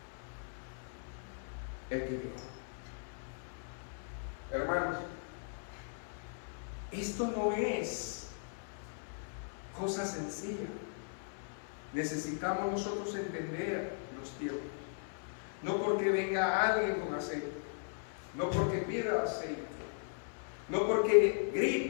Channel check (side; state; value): right; silent; 53 dB below the other